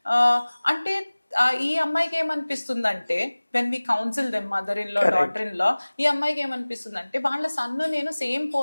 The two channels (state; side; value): inverted; both; correlation -1.00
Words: అంటే ఈ అమ్మాయికి ఏమనిపిస్తుందంటే, when we counsel them mother in law daughter in law, ఈ అమ్మాయికి ఏమనిపిస్తుందంటే, వాళ్ళ సన్ను నేను సేమ్